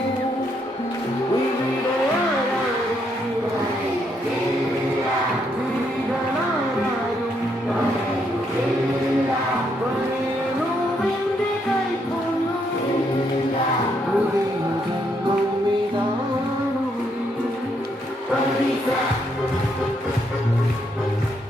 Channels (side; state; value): both; normal; correlation 0.75